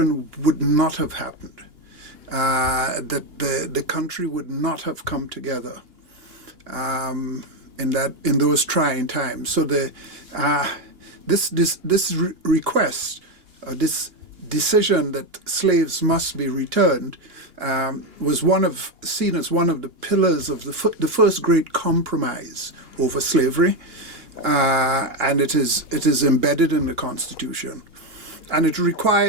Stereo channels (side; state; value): left; late; 2.8 ms